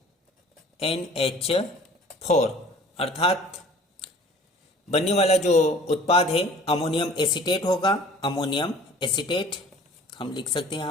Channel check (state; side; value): normal; both; correlation 0.49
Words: अर्थात बनने वाला जो उत्पाद है अमोनियम एसीटेट होगा। अमोनियम एसीटेट हम लिख सकते हैं